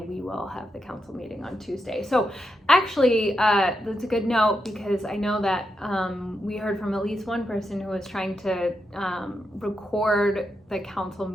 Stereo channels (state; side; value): normal; both; correlation 0.85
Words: will have the council meeting on Tuesday. So actually, that's a good note because I know that we heard from at least one person who was trying to record the council